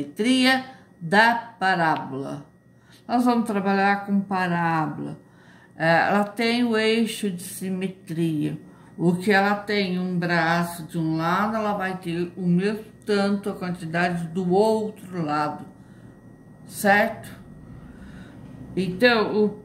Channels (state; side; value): identical; both; correlation 1.00